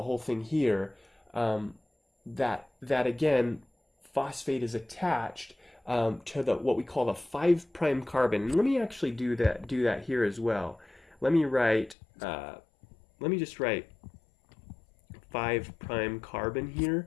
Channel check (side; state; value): right; drops out; at 12.0 s